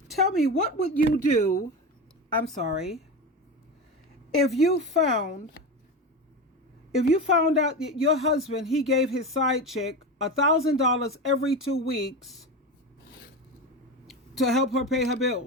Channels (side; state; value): both; normal; correlation 0.22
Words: Tell me, what would you do, if you found out that your husband, he gave his side chick $1,000 every 2 weeks to help her pay her